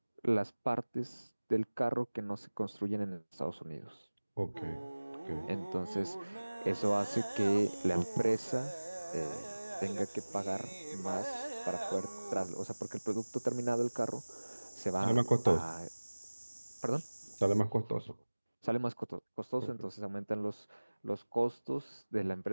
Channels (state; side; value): inverted; both; correlation -1.00